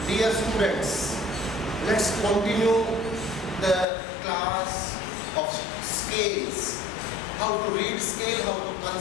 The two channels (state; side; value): drops out; right; at 3.9 s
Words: Dear students, let's continue the class of scales. How to read scale, how to